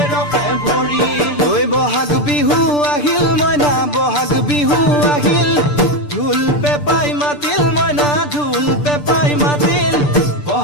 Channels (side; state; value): right; late; 6.8 ms